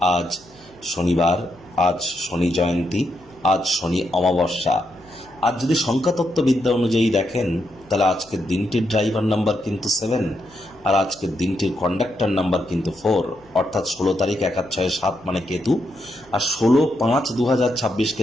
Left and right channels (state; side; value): noise; left; hum, 28 dB below the sound